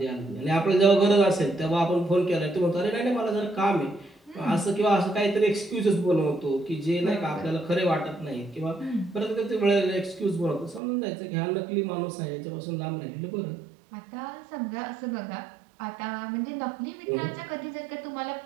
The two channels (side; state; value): left; drops out; at 10.8 s